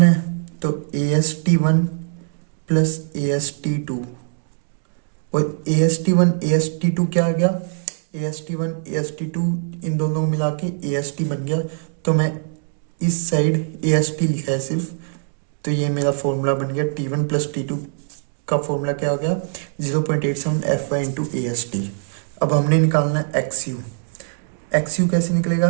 है, तो AST1 प्लस AST2 और AST1 AST2 क्या आ गया, AST1 AST2 इन दोनों मिला के AST बन गया। तो मैं इस साइड AST लिखा है सिर्फ, तो ये मेरा फॉर्मूला बन गया। T1 प्लस T2 का फॉर्मूला क्या हो गया 0.87 FY इंटू AST। अब हमने निकालना है XU। XU कैसे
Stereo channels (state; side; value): silent; left; digital silence